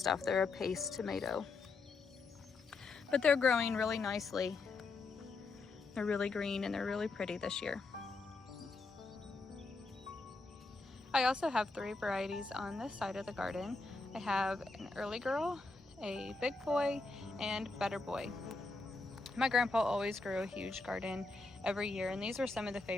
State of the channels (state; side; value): quieter; right; 3.7 dB